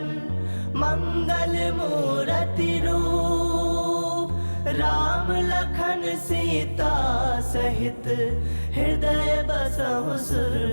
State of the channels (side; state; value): both; inverted; correlation -1.00